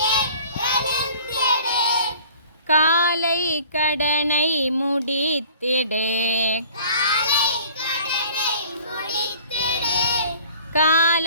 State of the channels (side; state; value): both; inverted; correlation -0.48